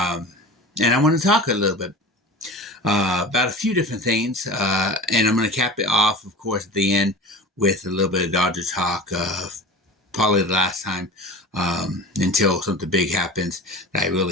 I want to talk a little bit about a few different things, and I'm going to cap it off, of course, at the end with a little bit of Dodger talk, probably the last time until something big happens that I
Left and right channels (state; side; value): normal; both; correlation 0.34